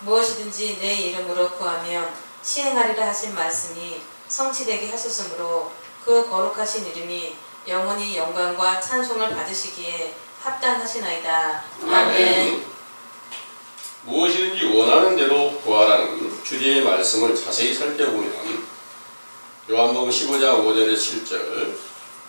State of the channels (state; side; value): inverted; both; correlation -1.00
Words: 무엇이든지 내 이름으로 구하면 시행하리라 하신 말씀이 성취되게 하셨으므로 그 거룩하신 이름이 영원히 영광과 찬송을 받으시기에 합당하시나이다. 아멘. 무엇이든지 원하는 대로 구하라는 주제의 말씀을 자세히 살펴보면 요한복음 15장 5절에 7절